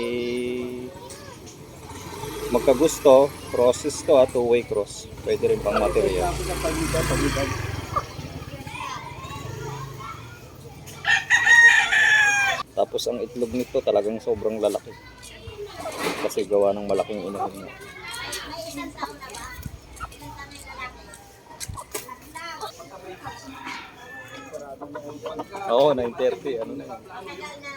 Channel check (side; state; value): both; identical; correlation 1.00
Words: magkagusto, crosses to, two-way cross. Pwede rin pang material. Tapos ang itlog nito talagang sobrang lalaki. Kasi gawa ng malaking inahin niya. Oo, 9:30. Ano na yun?